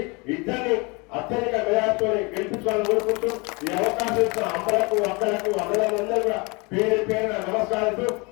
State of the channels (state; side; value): quieter; right; 28.3 dB